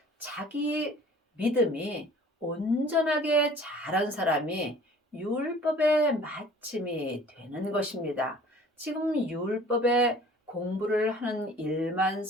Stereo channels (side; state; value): both; normal; correlation 0.49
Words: 자기 믿음이 온전하게 자란 사람이 율법의 마침이 되는 것입니다. 지금 율법의 공부를 하는 일만